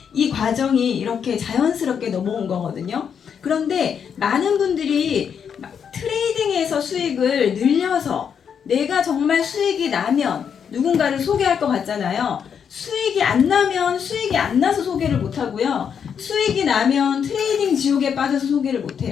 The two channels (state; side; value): quieter; right; 7.4 dB